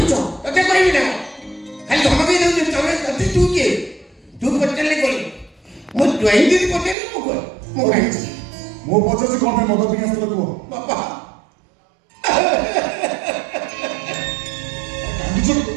ତତେ କହିବି ନା ଖାଲି ଧମକେଇ ଦେଉଛି। ତମେ ତତେ ତୁ କିଏ? ତୁ ପଚାରିଲେ କହିଲି ମୁଁ ଡ୍ରଇଂ ଦିଦି ପଚାରିଲି ମୁଁ କହ ମୁଁ କାହିଁକି ମୁଁ ପଚାରୁଛି କ'ଣ ପାଇଁ ମଦ ପିଇ ଆସିଥିଲ କୁହ। ବାପା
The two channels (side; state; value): left; drops out; at 7.0 s